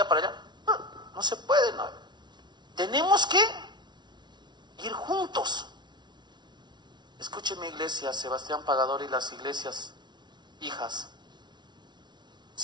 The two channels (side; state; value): left; late; 0.21 ms